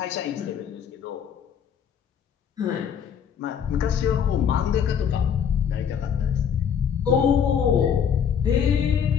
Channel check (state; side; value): quieter; right; 7.8 dB